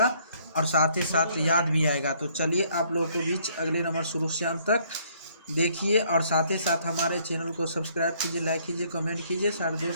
और साथ ही साथ याद भी आएगा। तो चलिए आप लोगों को बीच अगले नंबर शुरू से अंत तक देखिए, और साथ ही साथ हमारे चैनल को सब्सक्राइब कीजिए, लाइक कीजिए, कमेंट कीजिए, सारे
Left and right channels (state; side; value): inverted; both; correlation -0.65